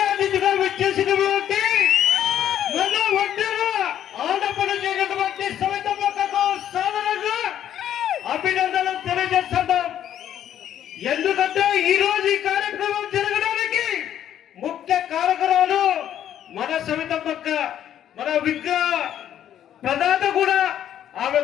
అతిథిగా వచ్చేసినటువంటి మన ఒడ్డెర ఆడపడుచేటటువంటి సవితమ్మకు సాధారణంగా అభినందనలు తెలియజేస్తున్నాం. ఎందుకంటే ఈ రోజు ఈ కార్యక్రమం జరగడానికి ముఖ్య కారకురాలు మన సవితమ్మక్క, మన విగ్రహ ప్రదాత కూడా ఆమె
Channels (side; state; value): right; quieter; 10.6 dB